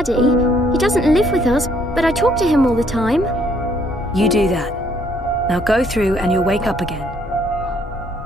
He doesn't live with us, but I talk to him all the time. You do that. Now go through and you'll wake up again.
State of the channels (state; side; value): normal; both; correlation 0.66